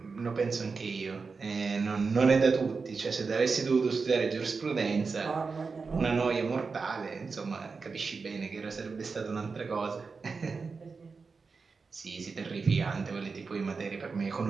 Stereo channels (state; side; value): quieter; left; 4.7 dB